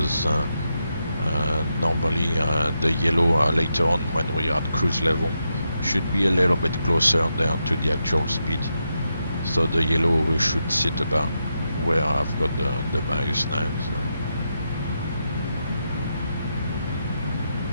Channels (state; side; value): inverted; both; correlation -0.84